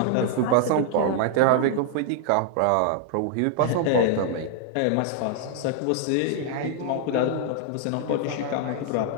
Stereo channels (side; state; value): both; different; correlation 0.00